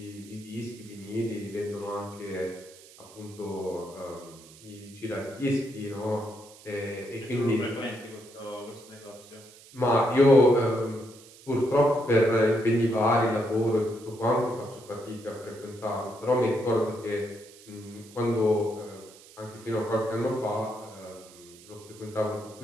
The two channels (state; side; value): noise; right; hiss, 22 dB below the sound